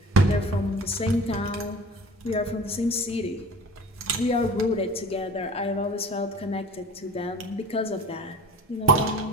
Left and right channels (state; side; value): normal; both; correlation 0.41